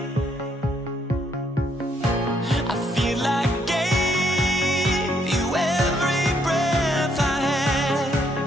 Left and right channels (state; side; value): normal; both; correlation 0.72